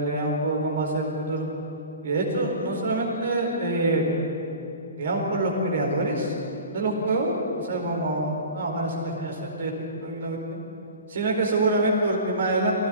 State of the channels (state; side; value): inverted; both; correlation -0.38